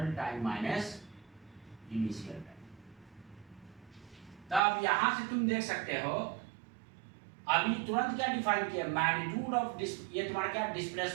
time minus initial time. तब यहां से तुम देख सकते हो, अभी तुरंत क्या डिफाइन किया, मैग्नीट्यूड ऑफ ये तुम्हारा क्या,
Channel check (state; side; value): drops out; left; at 4.6 s